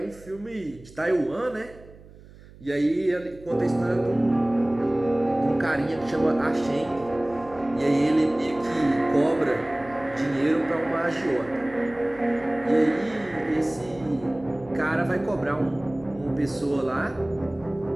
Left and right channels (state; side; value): noise; right; hum, 21 dB below the sound